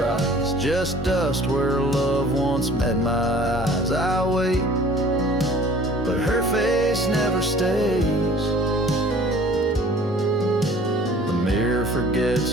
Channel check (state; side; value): normal; both; correlation 0.50